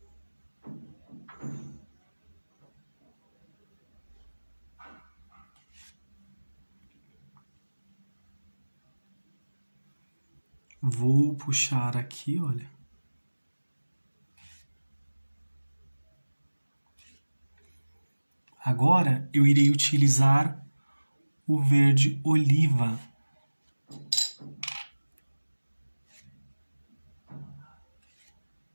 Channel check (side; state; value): both; inverted; correlation -1.00